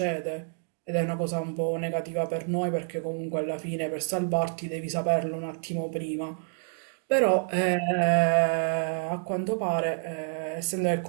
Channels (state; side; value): silent; left; 56 dB below the other